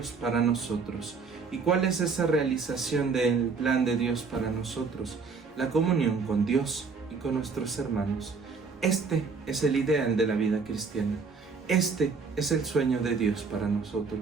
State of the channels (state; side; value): quieter; left; 4.9 dB